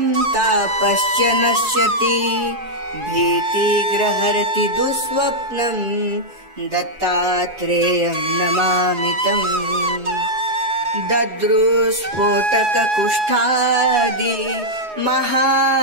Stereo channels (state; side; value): late; left; 4.7 ms